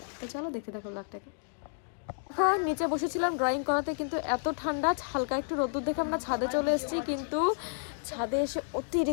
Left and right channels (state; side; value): silent; right; digital silence